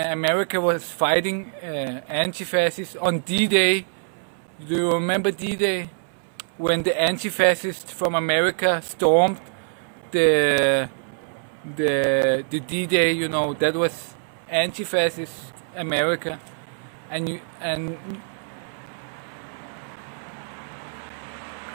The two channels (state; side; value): silent; left; 59 dB below the other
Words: was fighting anti-fascists on D-Day. Do you remember D-Day? When the anti-fascists from America stormed the D-Day, you know, that was anti-fascist America. And